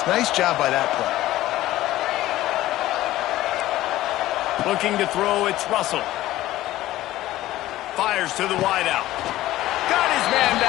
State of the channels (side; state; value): right; quieter; 15.5 dB